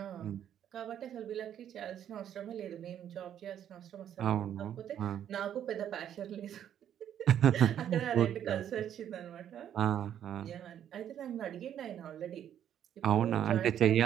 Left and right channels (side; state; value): left; quieter; 10.0 dB